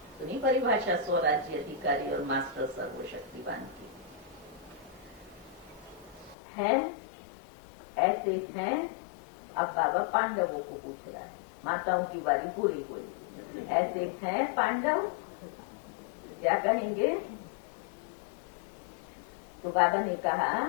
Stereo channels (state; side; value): drops out; right; at 6.4 s